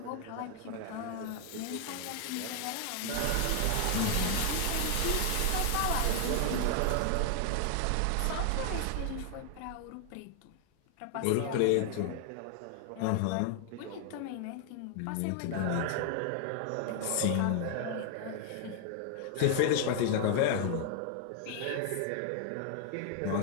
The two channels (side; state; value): both; different; correlation 0.00